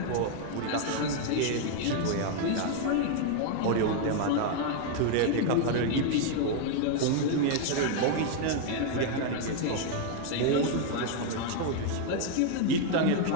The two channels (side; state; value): both; different; correlation 0.00